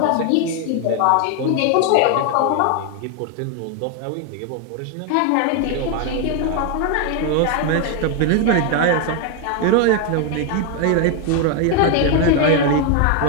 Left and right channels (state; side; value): different; both; correlation 0.01